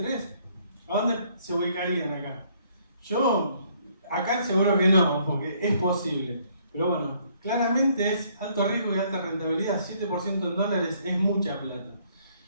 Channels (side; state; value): both; inverted; correlation -0.65